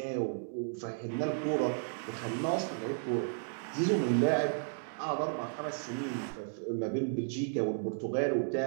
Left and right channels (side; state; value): left; silent; digital silence